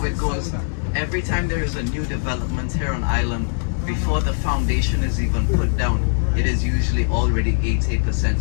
it goes. Every time there is a new development here on island, before the foundation is even put down, it is usually already 80%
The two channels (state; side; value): silent; right; 65 dB below the other